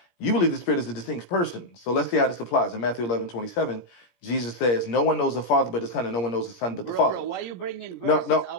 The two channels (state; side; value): late; right; 17 ms